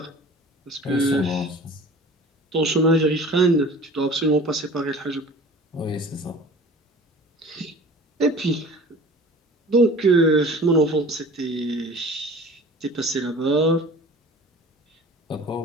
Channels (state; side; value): normal; both; correlation 0.43